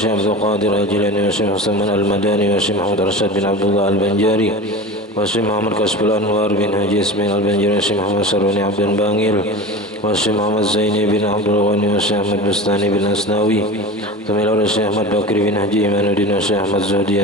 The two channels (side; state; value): both; normal; correlation 0.31